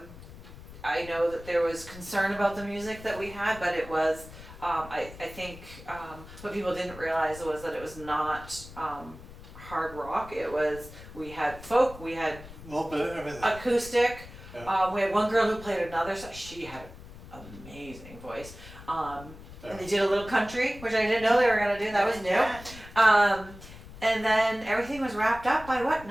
I know that there was concern about the music that we had, but it was, I think, what people didn't realize was that it was not hard rock. It was, we had folk, we had A little bit of everything. acoustic. Yeah. We had one girl who played another, so she had an amazing voice. And they did a little country, which I didn't know they were gonna do. That was new. Yeah. And then everything was wrapped up by what,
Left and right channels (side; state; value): left; noise; rumble, 16 dB below the sound